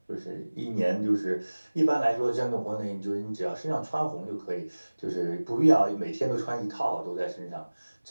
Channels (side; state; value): both; inverted; correlation -1.00